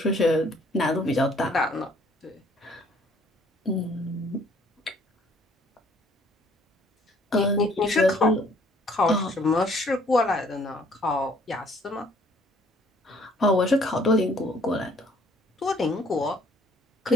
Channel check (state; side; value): normal; both; correlation 0.60